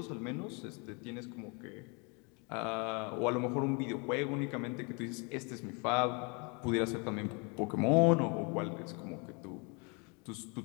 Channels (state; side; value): quieter; right; 32.6 dB